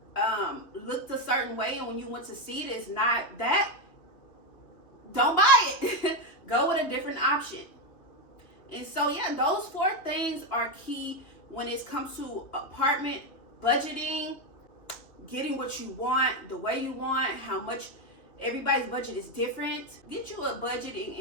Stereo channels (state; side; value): late; right; 3.2 ms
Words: looked a certain way, and when you went to see it, it's not that. Don't buy it. Go with a different option. And so yeah, those 4 things are key when it comes to apartment budgeting, getting what you want, the way you want, how much. Everybody's budget is different. Get you a budget